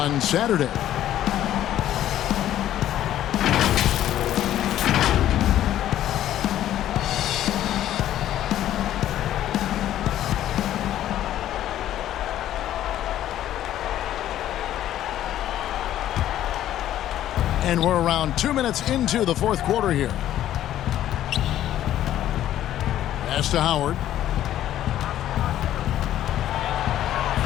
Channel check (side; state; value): right; quieter; 12.3 dB